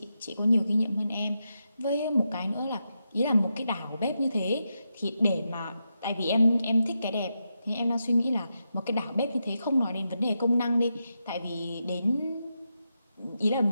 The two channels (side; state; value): both; inverted; correlation -0.86